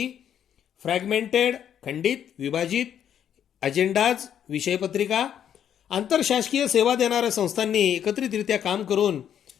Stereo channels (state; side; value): quieter; right; 9.4 dB